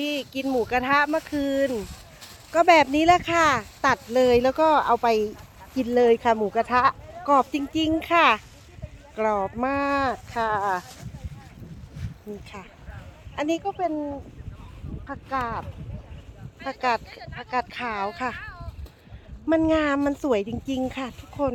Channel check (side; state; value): both; identical; correlation 1.00